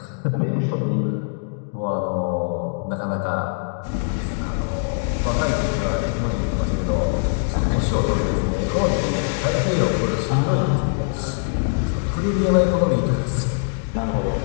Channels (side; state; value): right; silent; digital silence